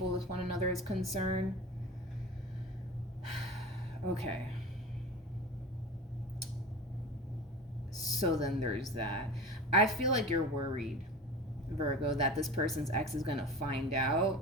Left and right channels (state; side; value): normal; both; correlation 0.33